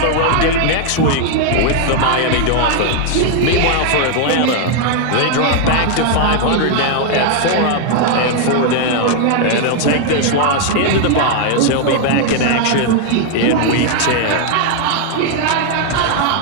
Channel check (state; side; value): different; both; correlation 0.00